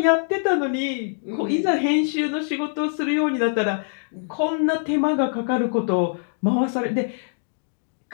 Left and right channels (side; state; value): right; silent; digital silence